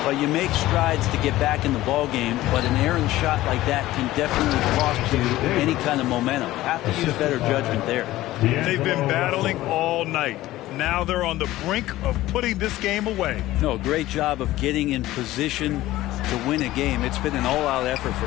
Well, you make strides to get back in the ball game, but an errant shot like that can definitely cost you any kind of momentum. Have to use better judgment there. They've been battling all night. Now they're on the brink of putting this game away. No, great job of getting in position to win a game. It's been an all-out effort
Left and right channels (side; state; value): right; quieter; 16.2 dB